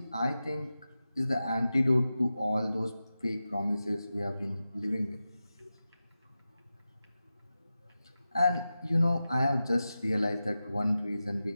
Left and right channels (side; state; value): both; inverted; correlation -0.93